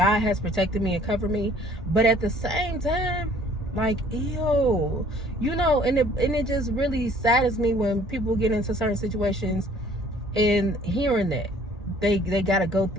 has protected me and covered me. But at the same time, like, ew, you know, and it just really saddens me when people get into certain situations and hearing that they gotta go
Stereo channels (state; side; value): normal; both; correlation 0.56